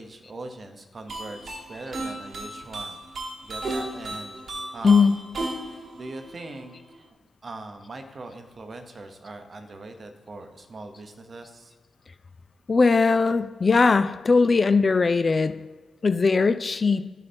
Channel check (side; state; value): right; quieter; 3.7 dB